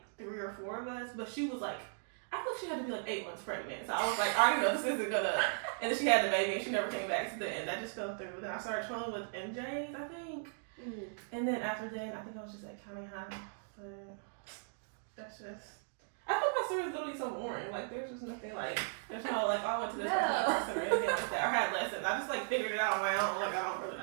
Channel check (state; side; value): silent; left; digital silence